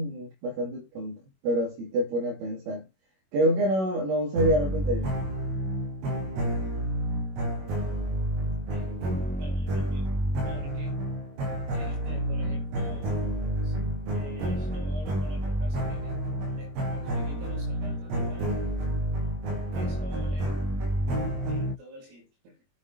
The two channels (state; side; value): late; left; 21 ms